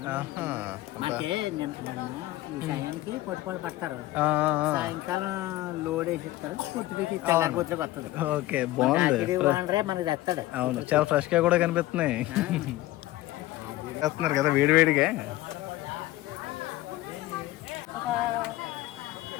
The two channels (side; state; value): right; quieter; 16.9 dB